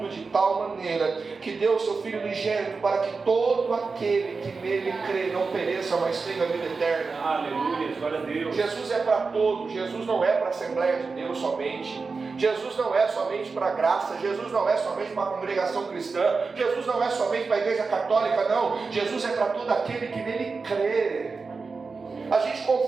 de tal maneira que deu o seu Filho unigênito para que todo aquele que nele crê não pereça, mas tenha a vida eterna. Aleluia, glória a Deus. Jesus é para todos. Jesus não é para a Assembleia de Deus somente. Jesus não é somente para a graça. Jesus não é somente para a congregação cristã. Jesus não é somente para a igreja católica, não. Jesus é para todo aquele que nele crê. A gente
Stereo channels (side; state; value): left; quieter; 4.5 dB